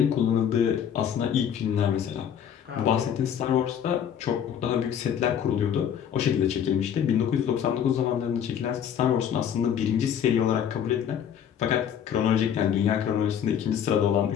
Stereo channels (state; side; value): quieter; right; 8.8 dB